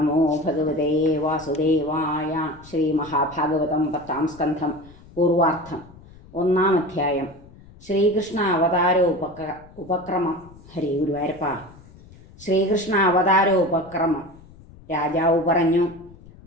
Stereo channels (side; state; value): left; noise; rumble, 22 dB below the sound